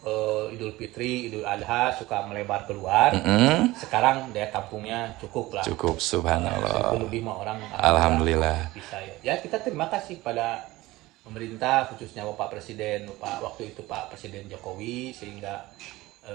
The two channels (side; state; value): left; quieter; 18.9 dB